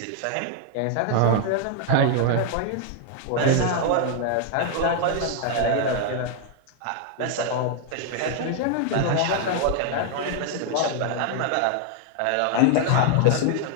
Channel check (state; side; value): different; both; correlation 0.00